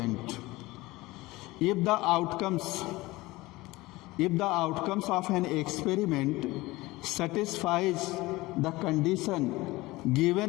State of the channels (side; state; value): right; quieter; 20.2 dB